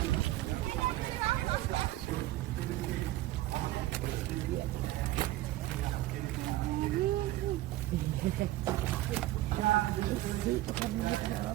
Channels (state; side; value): quieter; left; 16.2 dB